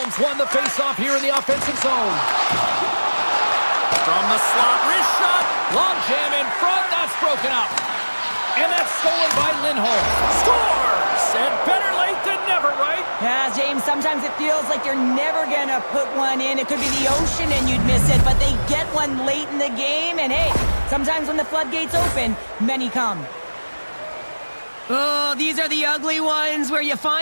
won the faceoff here in the offensive zone. From the slot, wrist shot, long jam in front, that's broken up. And that's stolen by Lindholm. Scores! And better late than never, right? Yeah, James, sometimes it feels like you're never going to put one in. It could be the ocean and you'd miss it, but they get one late in the game. And hey, sometimes when the floodgates open, many come. Oh, these are the ugly ones where you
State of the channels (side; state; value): both; inverted; correlation -1.00